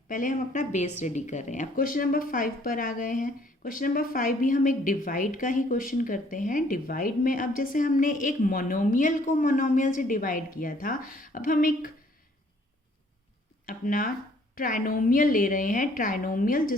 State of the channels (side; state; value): both; normal; correlation 0.61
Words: पहले हम अपना बेस रेडी कर रहे हैं। अब क्वेश्चन नंबर 5 पर आ गए हैं। क्वेश्चन नंबर 5 भी हम एक डिवाइड का ही क्वेश्चन करते हैं। डिवाइड में अब जैसे हमने एक मोनोमियल को मोनोमियल से डिवाइड किया था, अब हम एक अपना ट्राइनोमियल ले रहे हैं। ट्राइनोमियल